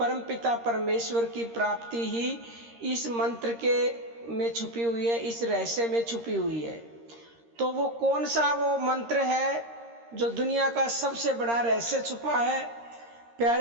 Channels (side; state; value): left; late; 13 ms